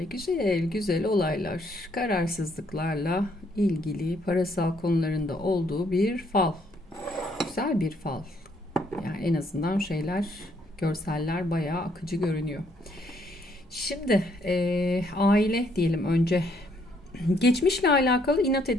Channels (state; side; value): normal; both; correlation 0.69